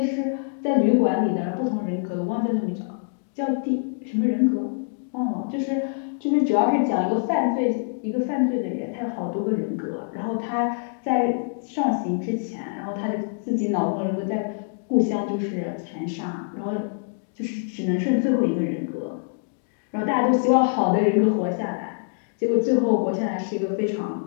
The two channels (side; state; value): right; silent; digital silence